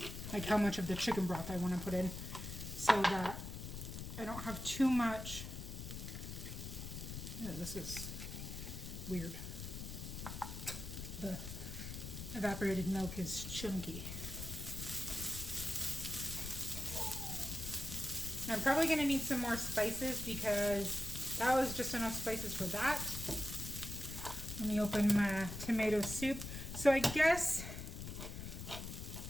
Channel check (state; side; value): noise; left; rumble, 8 dB below the sound